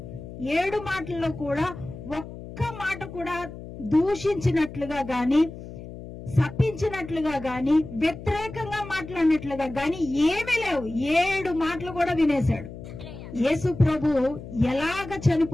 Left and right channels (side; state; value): left; noise; hum, 13 dB below the sound